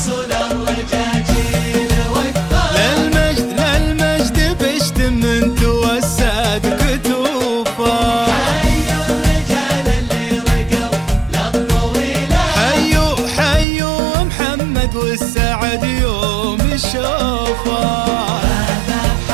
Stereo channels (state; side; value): drops out; left; at 13.7 s